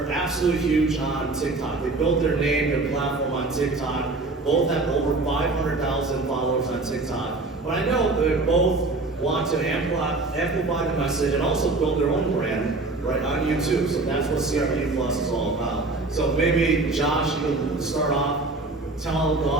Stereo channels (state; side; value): quieter; left; 3.3 dB